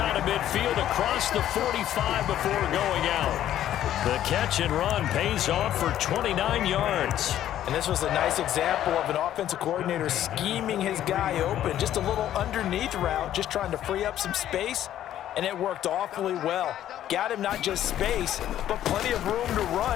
of midfield across the 45 before going out. The catch and run pays off for 29 yards. And this was a nice example of an offensive coordinator scheming his guy open. Just a little underneath route, just trying to free up some space, and it worked awfully well. Got him not just space, but plenty of room to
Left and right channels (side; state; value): right; quieter; 11.8 dB